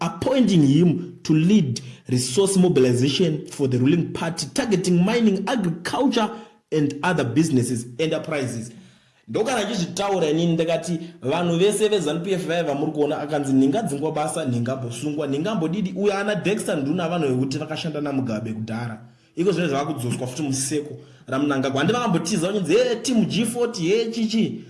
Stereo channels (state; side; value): identical; both; correlation 1.00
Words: him to lead resource mobilization for the ruling party targeting mining, agriculture and other businesses enterprises. Ndokana chizvitaura inini ndakati vanhu vese veZANU-PF vaiva muri kuona akanzi ningadzingwa basa ningambosungwa ningambodidi uyo ana Dexter Nduna vanhu vekuti vakashanda naMugabe kudhara. Iko zvine zvavakudzoswa futi museko raMnangagwa. Handi vakambotiza vachinzi team G40 chichi